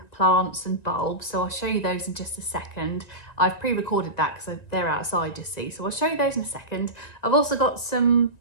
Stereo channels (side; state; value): right; late; 1.9 ms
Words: plants and bulbs. So I'll show you those in just a second. I've pre-recorded that because they're outside, you see. So I'll show you those in a second. I've also got some